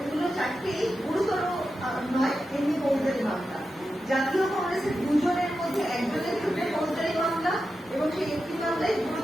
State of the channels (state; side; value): normal; both; correlation 0.90